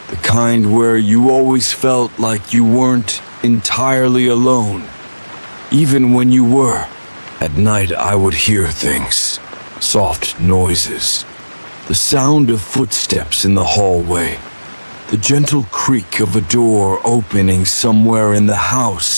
the kind where you always felt like you weren't entirely alone, even when you were. At night I would hear things, soft noises, the sound of footsteps in the hallway, the gentle creak of a door opening somewhere in the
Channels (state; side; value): inverted; both; correlation -1.00